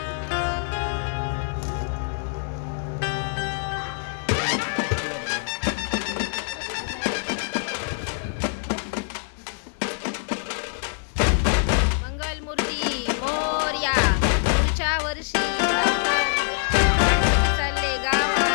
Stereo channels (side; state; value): right; silent; digital silence